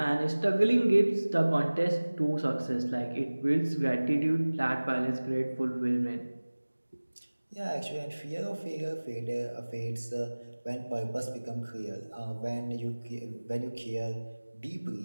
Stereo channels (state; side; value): inverted; both; correlation -1.00